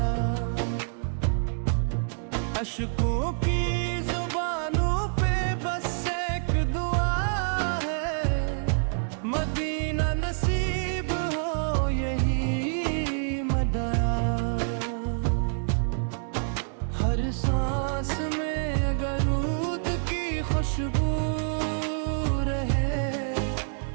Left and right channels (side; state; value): left; silent; digital silence